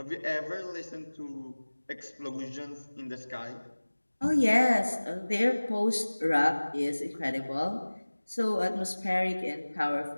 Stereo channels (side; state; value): both; inverted; correlation -1.00